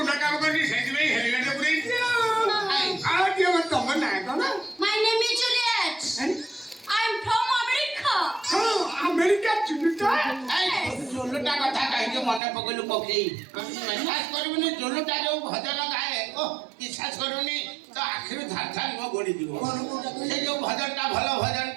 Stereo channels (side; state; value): left; drops out; at 12.4 s